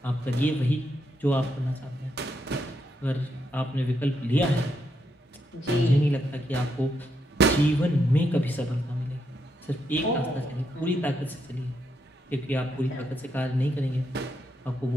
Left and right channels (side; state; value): both; normal; correlation 0.80